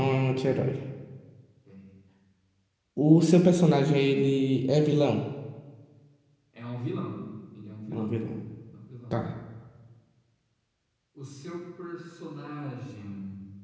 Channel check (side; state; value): both; identical; correlation 1.00